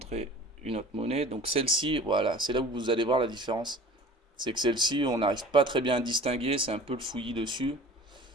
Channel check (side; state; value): both; normal; correlation 0.42